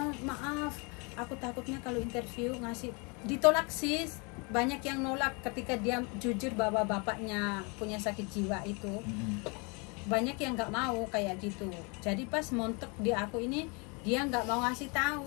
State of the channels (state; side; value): quieter; right; 31.7 dB